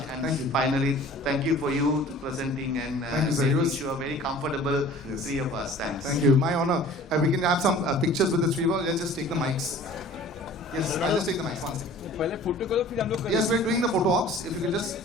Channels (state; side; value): normal; both; correlation 0.46